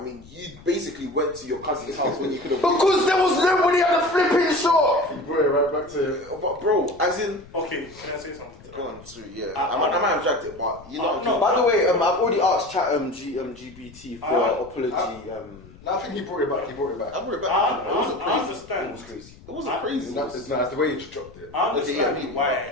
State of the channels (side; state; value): left; noise; rumble, 21 dB below the sound